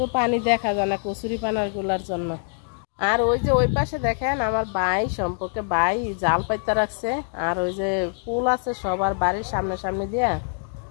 পানি দেখা যায় না কচুরি পানার গুলার জন্য। আর ওই যে ওই পাশে দেখেন আমার ভাই সম্পর্কে ভাই জাল পাইতে রাখছে, আর ওই যে ফুল আছে সবার বাড়ির সামনে দিয়ে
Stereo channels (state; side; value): silent; right; 60 dB below the other